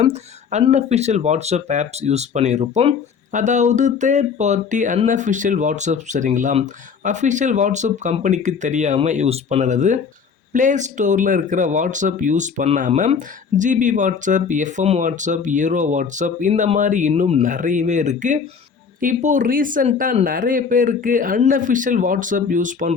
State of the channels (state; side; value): quieter; right; 6.1 dB